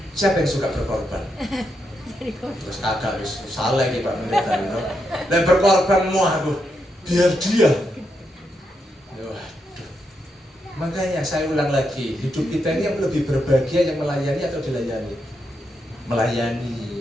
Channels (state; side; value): normal; both; correlation 0.82